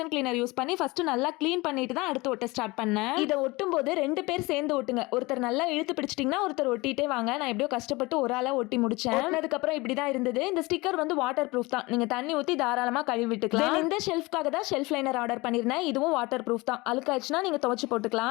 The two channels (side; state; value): right; quieter; 23.0 dB